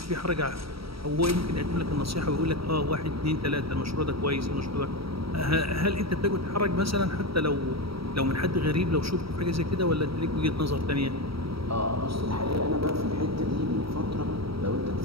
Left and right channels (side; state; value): left; late; 0.75 ms